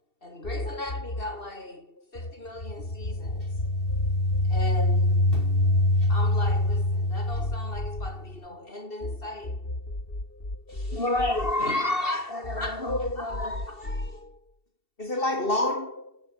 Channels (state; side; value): late; right; 2.7 ms